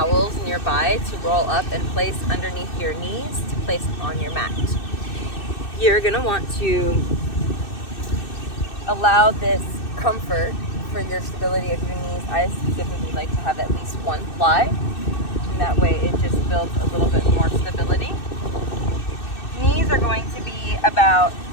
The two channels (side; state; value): right; late; 2.6 ms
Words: nearby to roll up and place underneath your knees to place on your mat. You're going to want to allow this comfort for your stability of your knees. I specifically like to have at least one ply, and that way it just builds a little bit more stability. Knees are going to be about